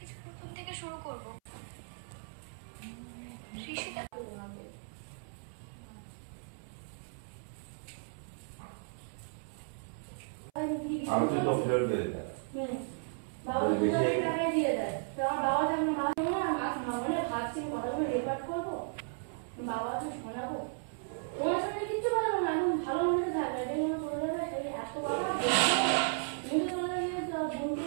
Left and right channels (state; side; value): silent; left; 55 dB below the other